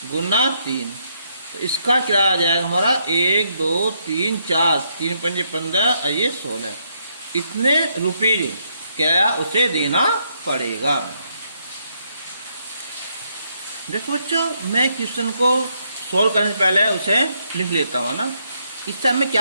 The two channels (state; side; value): inverted; both; correlation -0.76